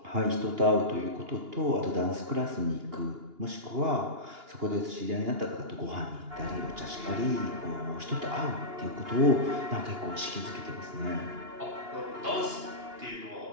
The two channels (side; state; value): left; late; 2.8 ms